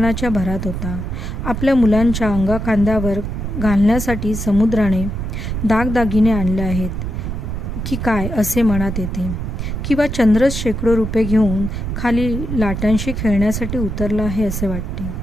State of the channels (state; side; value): noise; right; rumble, 4 dB below the sound